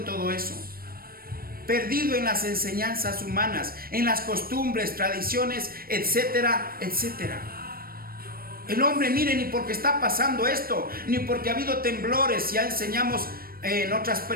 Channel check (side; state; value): left; late; 0.43 ms